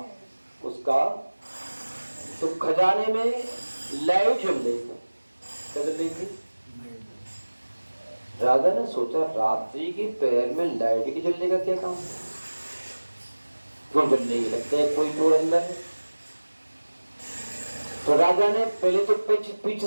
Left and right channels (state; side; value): inverted; both; correlation -1.00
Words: उसका, तो खजाने में लाइट जल रही थी। क्या जल रही थी? राजा ने सोचा, रात्रि के पहर में लाइट के जलने का क्या काम है? क्यों डर नहीं लगता है कोई चोर अंदर है? तो राजा ने पहले तो पीछे